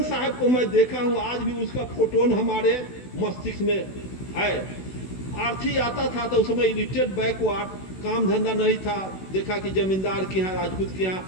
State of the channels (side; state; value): right; late; 16 ms